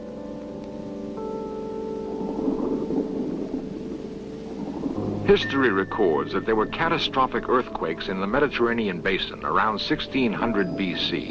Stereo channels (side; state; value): both; identical; correlation 1.00